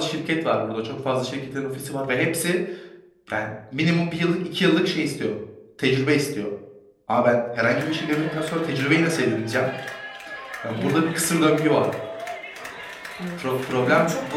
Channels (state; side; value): identical; both; correlation 1.00